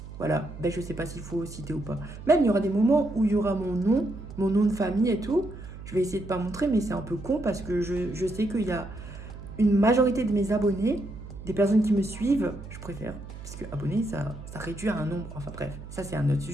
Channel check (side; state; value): right; noise; hum, 13 dB below the sound